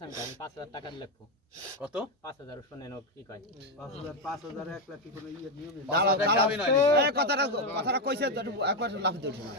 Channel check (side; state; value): both; normal; correlation 0.07